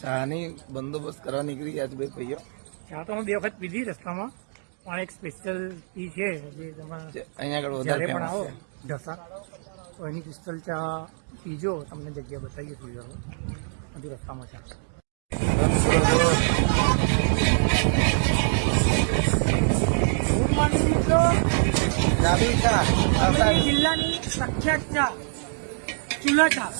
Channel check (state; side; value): silent; left; 62 dB below the other